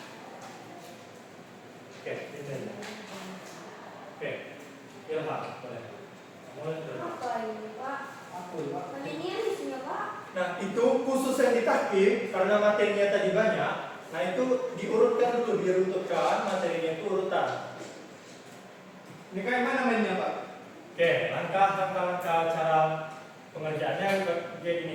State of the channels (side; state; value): both; identical; correlation 1.00